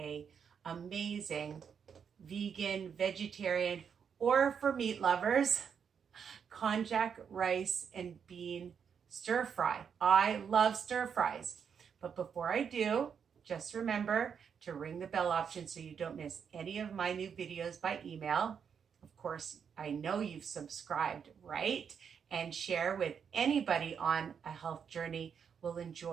amazing vegan, vegetarian, or for meat lovers, konjac rice and bean stir fry. I love stir fries. But before I do, just remember to ring the bell option so you don't miss any of my new videos by email. Of course, I know you've subscribed, right? And share with anybody on a health journey will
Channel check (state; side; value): quieter; left; 7.1 dB